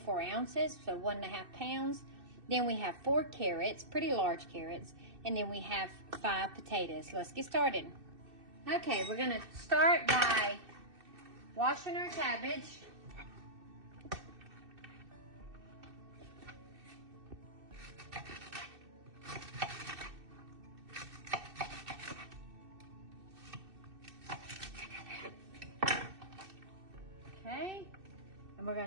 ounces, so 1.5 pounds. Then we have 4 carrots, pretty large carrots, and then we have 5 potatoes. Let's get started. Okay, we're gonna start by washing our cabbage. Okay. And we're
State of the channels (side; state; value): left; late; 2.6 ms